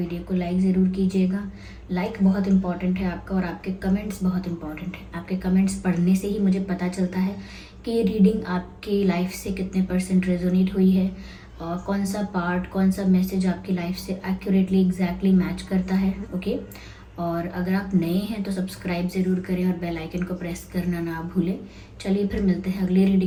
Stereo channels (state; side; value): identical; both; correlation 1.00